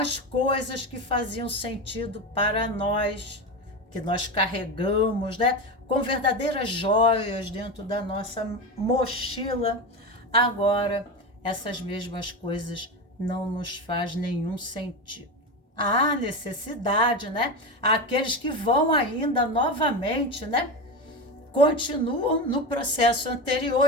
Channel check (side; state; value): both; normal; correlation 0.20